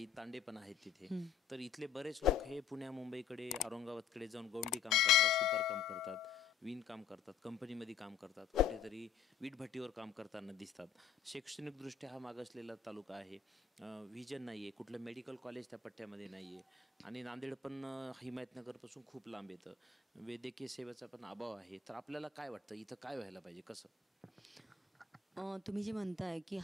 तांडे पण आहेत तिथे. तर इथले बरेच लोक हे पुण्या मुंबईकडे औरंगाबादकडे जाऊन गौंडी काम करतात, सुतार काम करतात, विण काम करतात, कंपनीमध्ये काम करतात, कुठेतरी वीटभट्टीवर काम करताना दिसतात. शैक्षणिकदृष्ट्या हा मागासलेला तालुका आहे, व्हिजन नाही आहे, कुठलं मेडिकल कॉलेज त्या पट्ट्यामध्ये नाही आहे आणि नांदेड पण हिमायतनगरपासून खूप लांब येतं, वैद्यकीय सेवेचा पण अभाव आहे. तर आपल्याला काय वाटतं इथं काय व्हायला पाहिजे, कसं? तुम्ही जे म्हणताय की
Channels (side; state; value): right; quieter; 7.5 dB